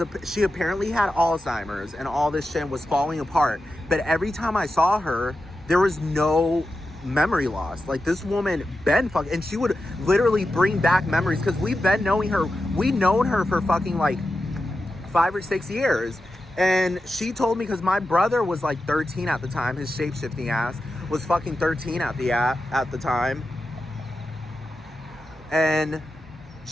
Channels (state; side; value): normal; both; correlation 0.90